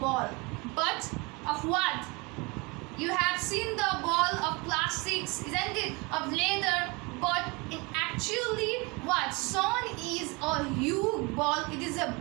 but of what? You have seen the ball of plastics, isn't it? Of leather, but in actually what? Sun is a huge ball. It is a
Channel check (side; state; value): left; quieter; 27.2 dB